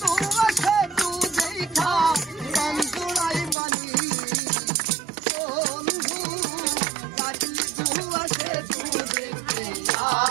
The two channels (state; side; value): drops out; left; at 3.6 s